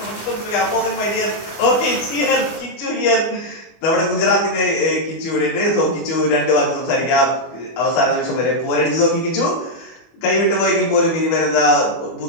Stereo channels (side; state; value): right; late; 24 ms